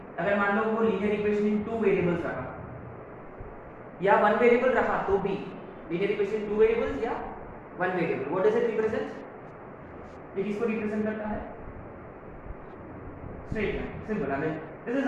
अगर मान लो वो लीनियर इक्वेशन इन 2 वेरिएबल्स रहा या 1 वेरिएबल रहा तो भी लीनियर इक्वेशन 2 वेरिएबल्स या 1 variable, what does it represent? ये किसको रिप्रेजेंट करता है? Straight line, simple. I mean this is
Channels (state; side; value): identical; both; correlation 1.00